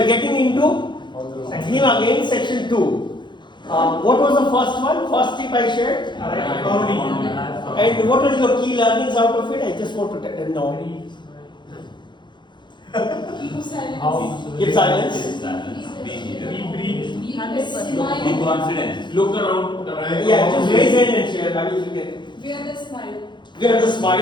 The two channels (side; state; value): right; late; 0.22 ms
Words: getting into theme again, section 2. What was the first one? First tip I shared? And what are your key learnings out of it? I just want to know. Keep silence. Keep silence. Be here. Be confident. Look around. Yeah, just raise hand and share. I mean, you get. Wear the smile. Wear the